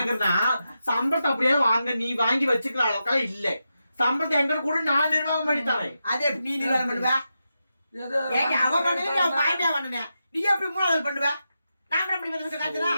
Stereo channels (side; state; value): both; inverted; correlation -0.88